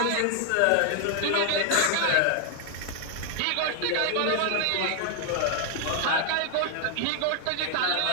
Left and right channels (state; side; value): different; both; correlation 0.00